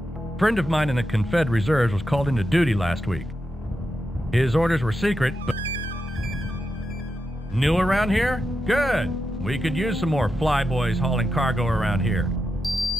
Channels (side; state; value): both; normal; correlation 0.87